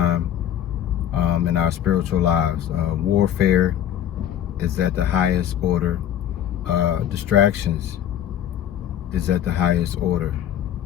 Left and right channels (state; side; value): quieter; right; 10.5 dB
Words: in our spiritual lives. Warfare is at the highest order. Distractions is at the highest order.